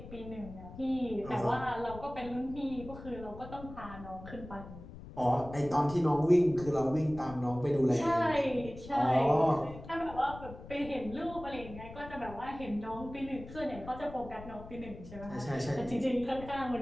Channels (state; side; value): noise; left; rumble, 14 dB below the sound